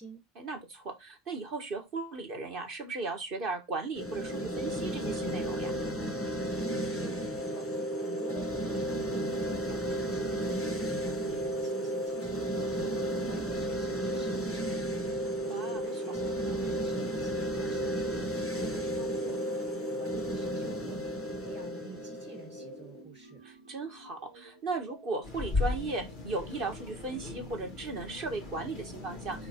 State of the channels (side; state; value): both; normal; correlation 0.43